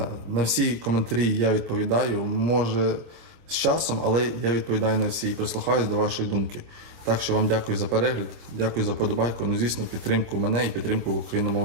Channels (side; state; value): left; late; 26 ms